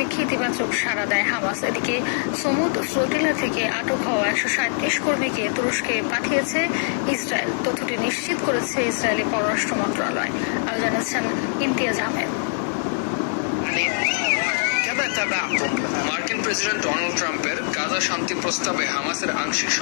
ইতিবাচক সাড়া দেয় হামাস। এদিকে সমুদ ফ্লোটিলা থেকে আটক হওয়া ১৩৭ কর্মীকে তুরস্কে পাঠিয়েছে ইসরায়েল। তথ্যটি নিশ্চিত করেছে ইসরায়েলি পররাষ্ট্র মন্ত্রণালয়। আরও জানিয়েছেন ইমতিয়াজ আহমেদ। মার্কিন প্রেসিডেন্ট ডোনাল্ড ট্রাম্পের গাজা শান্তি প্রস্তাবে হামাসের আংশিক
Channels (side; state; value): right; silent; 59 dB below the other